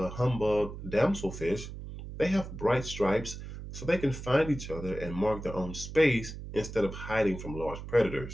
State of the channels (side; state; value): right; noise; hum, 10 dB below the sound